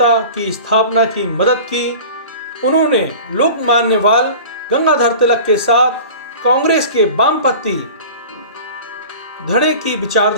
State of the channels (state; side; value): inverted; both; correlation -0.39